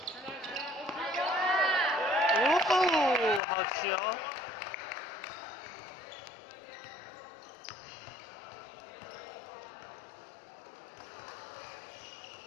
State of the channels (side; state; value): right; drops out; at 3.4 s